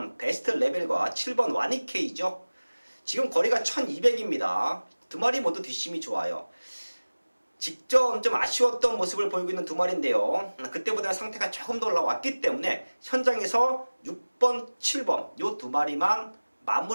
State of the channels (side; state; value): both; inverted; correlation -1.00